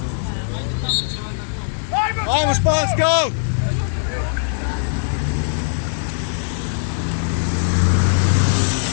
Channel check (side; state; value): right; silent; digital silence